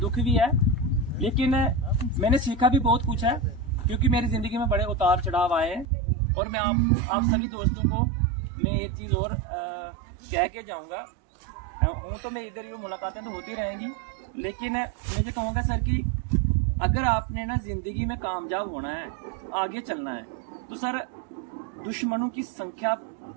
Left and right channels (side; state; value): left; drops out; at 5.9 s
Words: भी है, लेकिन मैंने सीखा भी बहुत कुछ है। क्योंकि मेरी ज़िंदगी में बड़े उतार चढ़ाव आए हैं। और मैं आप सभी दोस्तों को मैं एक चीज़ और कह के जाऊँगा, हूँ तो मैं इधर यूँ मुलाकातें तो होती रहेंगी, लेकिन मैं ये कहूँगा सर कि अगर आपने ना ज़िंदगी में कामयाब होना है, आगे चलना है, तो सर दुश्मनों की संख्या